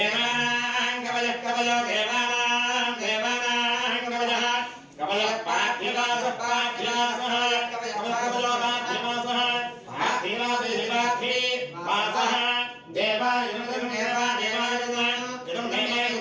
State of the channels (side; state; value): both; identical; correlation 1.00